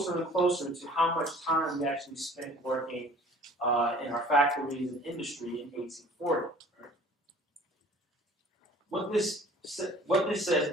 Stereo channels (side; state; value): both; normal; correlation 0.49